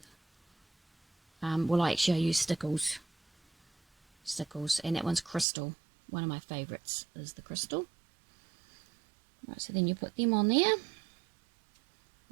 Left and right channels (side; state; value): left; drops out; at 5.5 s